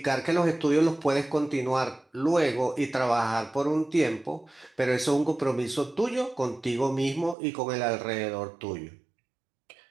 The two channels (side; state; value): left; drops out; at 7.4 s